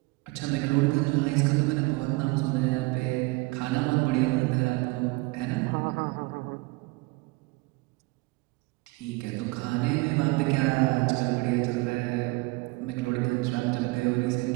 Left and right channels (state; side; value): quieter; left; 24.2 dB